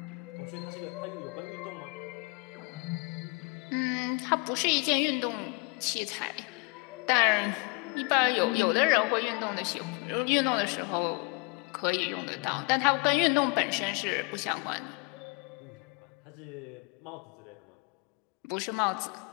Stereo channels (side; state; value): right; quieter; 30.1 dB